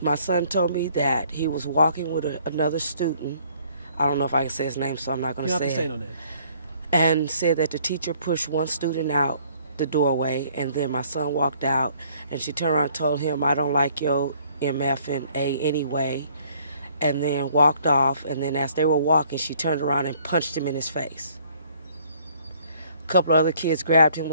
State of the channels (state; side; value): inverted; both; correlation -0.60